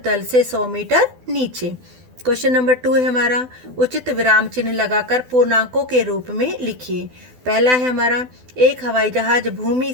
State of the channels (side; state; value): left; late; 12 ms